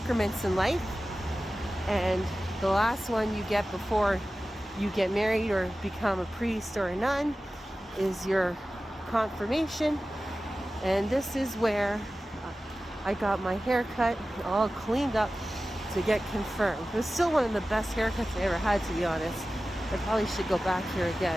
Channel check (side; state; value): both; normal; correlation 0.95